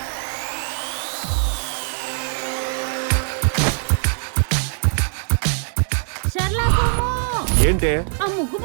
ఏంటే ఆ ముగ్గు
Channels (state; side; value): silent; left; digital silence